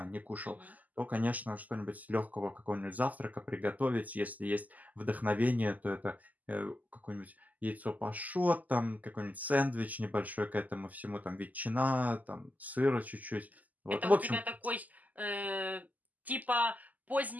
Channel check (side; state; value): left; late; 0.079 ms